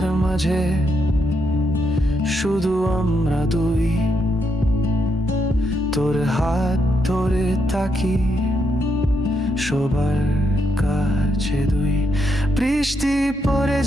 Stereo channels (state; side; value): normal; both; correlation 0.79